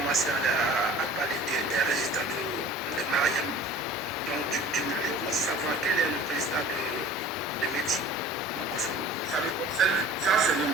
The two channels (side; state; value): both; normal; correlation 0.44